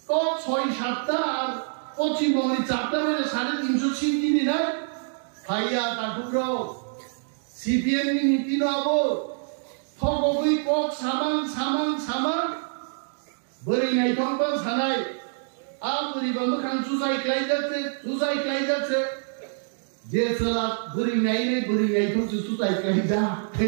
তো 6-7টা আর পশ্চিমবঙ্গের 4টা মানে 350 সিট দিদি না ভাইয়া কাকুরা সিপিএম নীতি নব থগই কক সামান বরি নাই থংবা সানাই আর বরিবা মখান সুজাই ক্লাই যাচ্ছে যে সালা বরি নাই থং সুজাই ক্লাই যা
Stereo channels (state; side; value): silent; left; digital silence